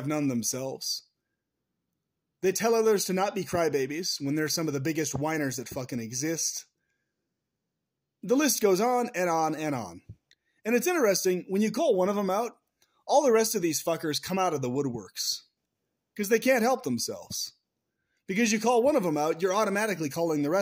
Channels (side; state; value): both; identical; correlation 1.00